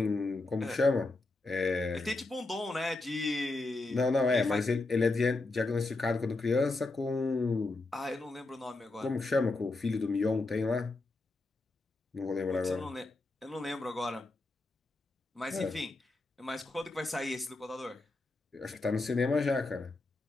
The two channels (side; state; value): right; quieter; 3.2 dB